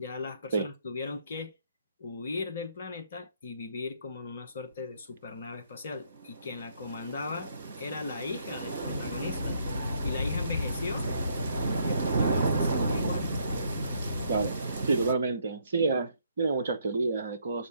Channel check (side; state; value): both; inverted; correlation -0.70